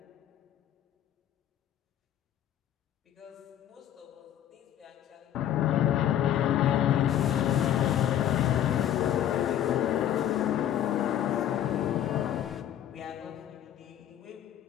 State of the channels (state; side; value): quieter; right; 11.0 dB